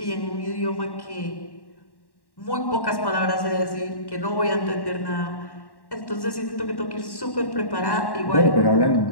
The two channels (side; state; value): right; late; 1.1 ms